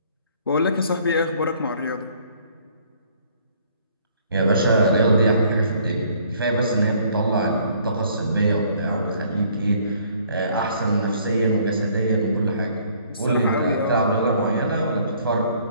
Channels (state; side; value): inverted; both; correlation -0.61